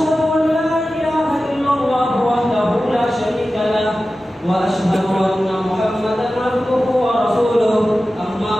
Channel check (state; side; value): normal; both; correlation 0.94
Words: أن لا إله إلا الله وحده لا شريك له وأشهد أن محمدا عبده ورسوله أما